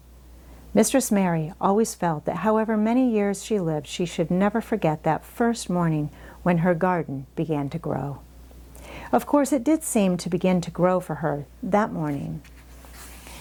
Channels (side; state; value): both; identical; correlation 1.00